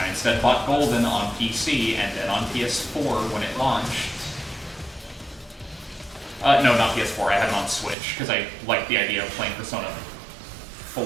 instead bought Golden on PC and then on PS4 when it launched. No, not PS4, I had it on Switch, because I like the idea of playing Persona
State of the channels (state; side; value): drops out; left; at 8.0 s